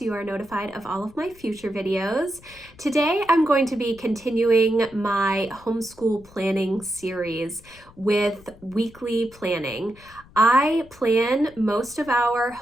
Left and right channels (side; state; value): left; noise; rumble, 24 dB below the sound